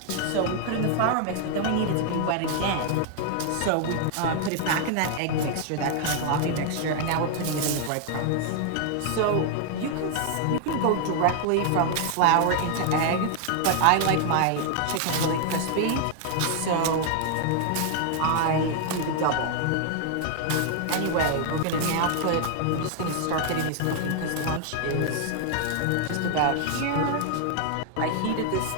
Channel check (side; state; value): both; different; correlation 0.00